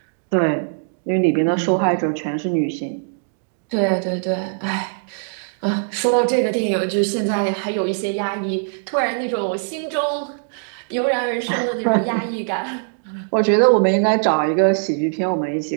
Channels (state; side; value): silent; left; digital silence